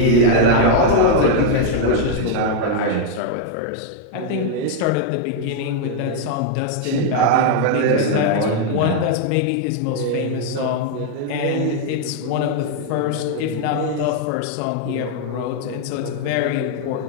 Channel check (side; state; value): both; different; correlation 0.00